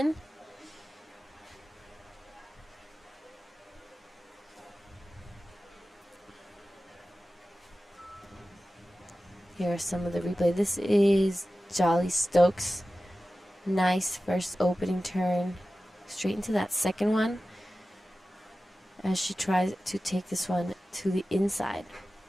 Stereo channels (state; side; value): normal; both; correlation 0.95